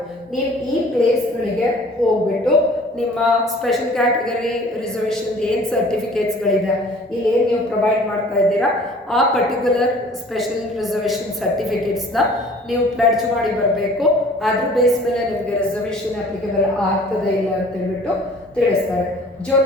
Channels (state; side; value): normal; both; correlation 0.50